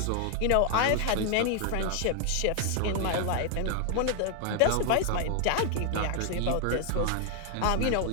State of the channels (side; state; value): both; different; correlation 0.00